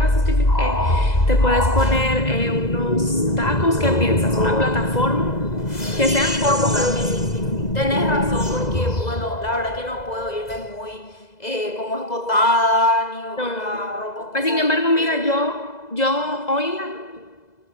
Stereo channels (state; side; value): late; right; 2.0 ms